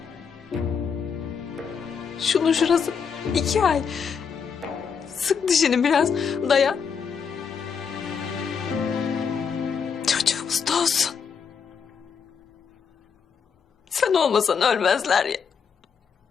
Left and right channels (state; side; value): quieter; right; 6.4 dB